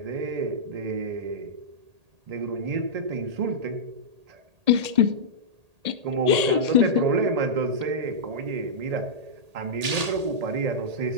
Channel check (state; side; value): late; left; 1.8 ms